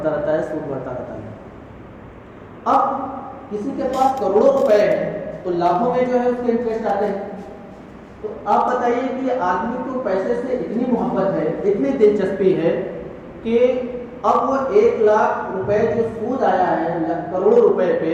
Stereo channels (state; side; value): identical; both; correlation 1.00